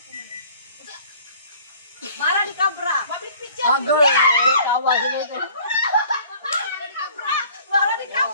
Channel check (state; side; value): inverted; both; correlation -0.52